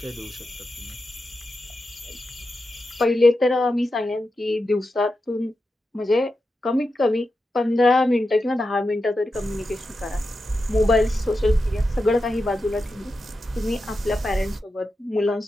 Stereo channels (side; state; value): both; normal; correlation 0.89